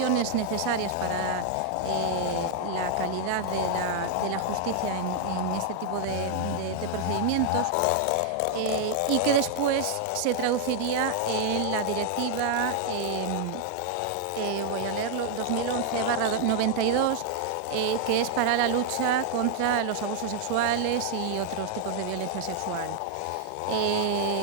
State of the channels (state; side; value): different; both; correlation 0.00